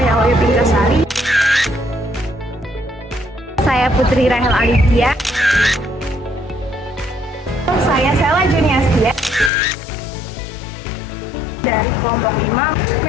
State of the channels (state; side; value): drops out; right; at 9.5 s